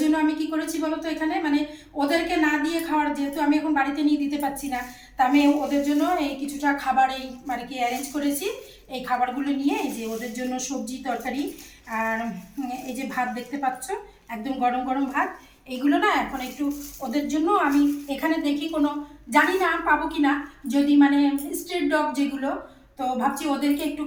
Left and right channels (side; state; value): both; identical; correlation 1.00